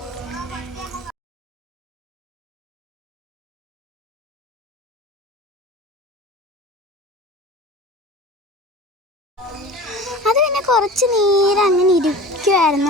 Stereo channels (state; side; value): normal; both; correlation 0.37